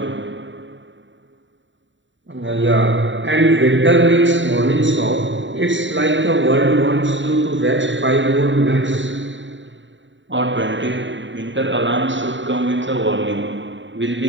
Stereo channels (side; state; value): left; late; 0.54 ms